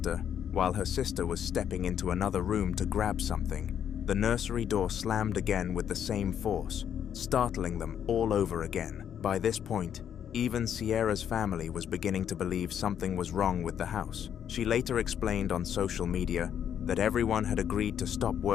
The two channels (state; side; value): quieter; right; 9.0 dB